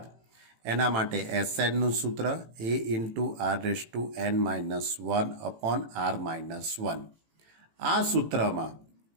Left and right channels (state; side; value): late; left; 18 ms